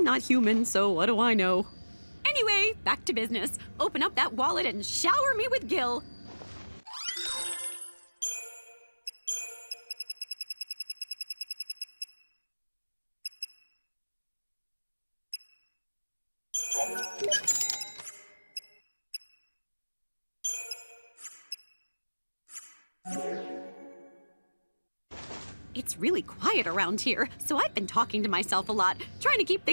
not human, so what do I know? Anyway, back to business. Open up that wallet and shower me with Gil. It's really quiet around here, so I've been talking to myself a lot, trying to keep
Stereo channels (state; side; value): inverted; both; correlation -1.00